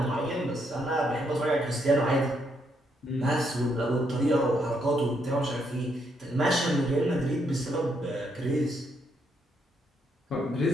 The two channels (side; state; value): both; normal; correlation 0.76